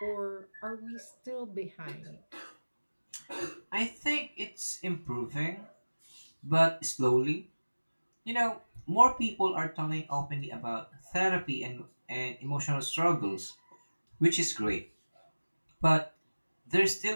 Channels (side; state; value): both; inverted; correlation -1.00